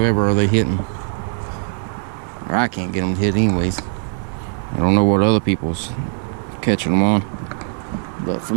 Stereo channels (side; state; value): left; silent; digital silence